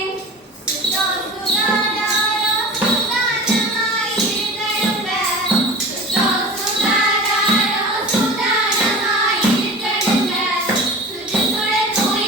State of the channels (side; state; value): both; normal; correlation 0.36